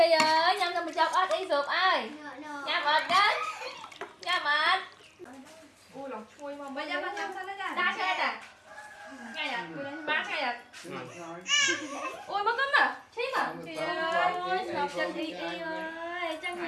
ơi, nhâm cho mình chọc ớt đi sụp ai. Nhâm ớt đấy. Nhâm ớt. Ui lòng chui mà bây giờ nó nhâm sao nó ra. Đá xe nè. Ngay à, bán ngay à. Ui mất cấm à, chết à. Trời ơi, sụp chân y y ơi, chân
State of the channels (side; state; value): both; identical; correlation 1.00